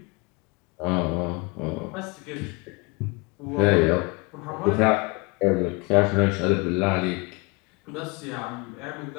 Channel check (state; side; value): quieter; right; 28.4 dB